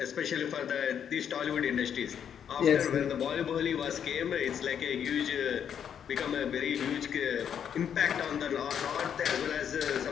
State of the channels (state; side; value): quieter; right; 8.5 dB